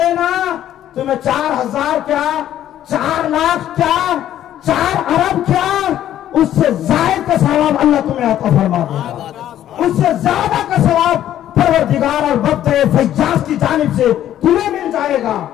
تمہیں 4000 کیا، 4 لاکھ کیا، 4 ارب کیا، اس سے زائد کا ثواب اللہ تمہیں عطا فرما دے گا، اس سے زیادہ کا ثواب پروردگار اور وقت فیاض کی جانب سے تمہیں مل جائے گا۔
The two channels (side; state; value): right; quieter; 11.8 dB